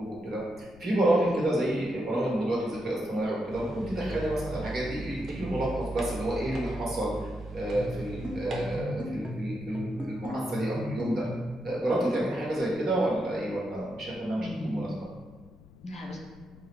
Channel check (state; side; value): noise; left; rumble, 22 dB below the sound